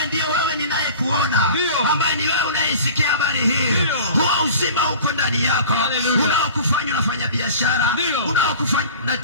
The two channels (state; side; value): inverted; both; correlation -0.41